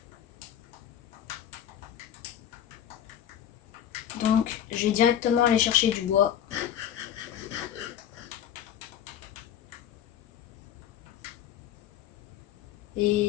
Donc, je vais directement aller chercher du bois.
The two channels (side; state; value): right; quieter; 10.2 dB